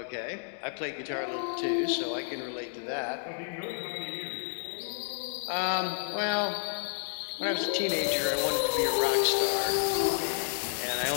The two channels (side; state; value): right; silent; digital silence